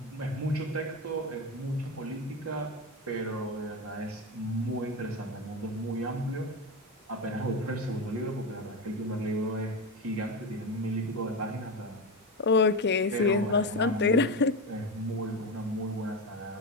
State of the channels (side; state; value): both; normal; correlation 0.18